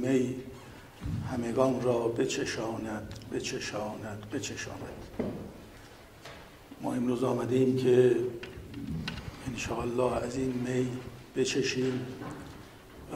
همگان را بچشاند بچشاند بچشاند. ما امروز آمده ایم که انشاءالله از این می بچشیم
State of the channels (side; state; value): both; identical; correlation 1.00